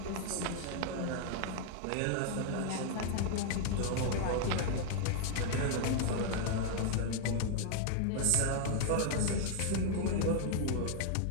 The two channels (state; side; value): different; both; correlation 0.00